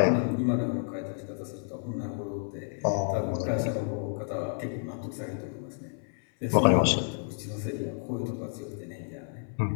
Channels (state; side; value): silent; right; 58 dB below the other